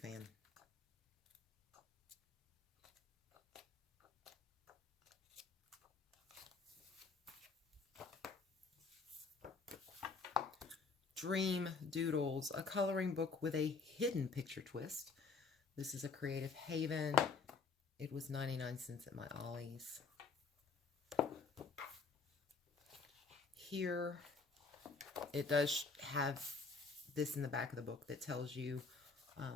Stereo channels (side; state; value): right; quieter; 4.6 dB